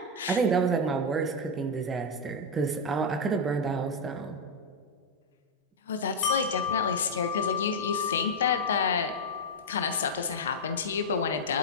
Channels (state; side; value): normal; both; correlation 0.00